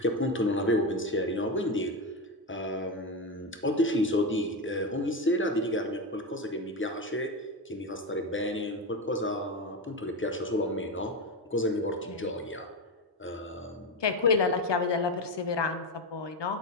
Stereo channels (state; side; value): normal; both; correlation 0.16